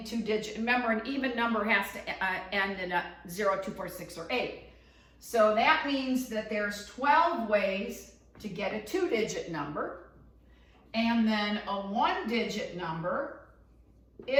2 digits. Remember, an even number has to end in a 0, 2, 4, 6, or 8. So that means that there's 12 ways to get a 2-digit number. And then a 1-digit number,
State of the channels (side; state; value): both; identical; correlation 1.00